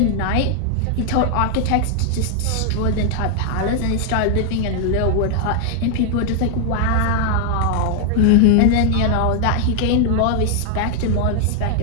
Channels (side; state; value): both; different; correlation 0.00